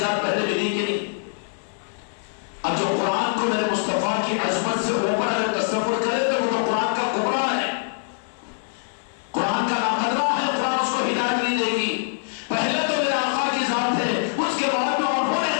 پہلے ملی کہ نہیں؟ اب جو قرآن کو میرے مصطفیٰ کی عظمت سے اوپر اگر تصور کرے تو وہ قرآن کا کبرا ہے، قرآن کا ناقدرہ ہے. قرآن اس کو ہدایت نہیں دے گی. پہلے تو میرے آقا کی ذات ہے، اس کے بعد میں انہوں نے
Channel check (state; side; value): silent; right; digital silence